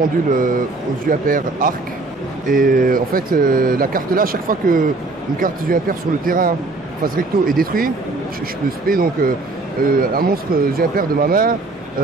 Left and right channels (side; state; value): left; quieter; 3.3 dB